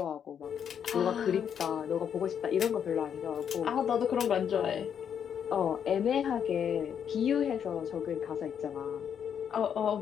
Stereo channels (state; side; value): quieter; right; 8.2 dB